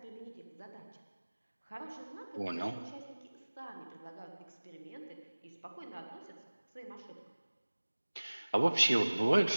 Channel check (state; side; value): inverted; both; correlation -1.00